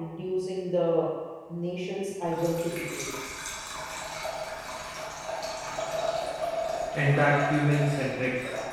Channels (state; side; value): identical; both; correlation 1.00